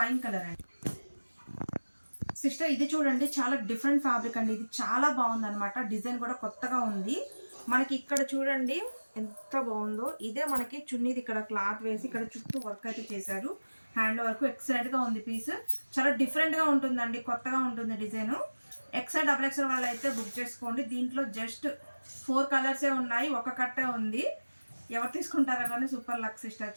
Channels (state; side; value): inverted; both; correlation -1.00